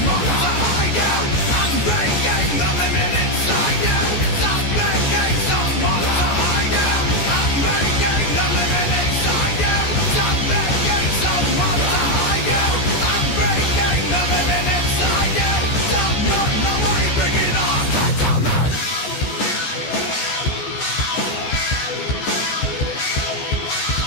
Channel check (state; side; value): late; right; 14 ms